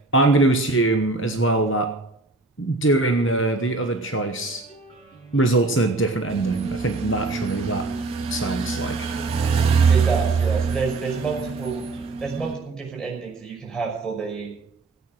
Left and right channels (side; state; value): left; quieter; 3.2 dB